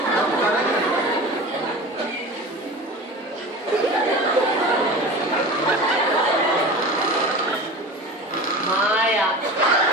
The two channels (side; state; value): both; normal; correlation 0.34